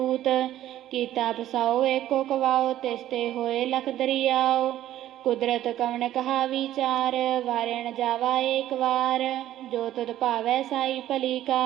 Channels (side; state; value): left; quieter; 13.1 dB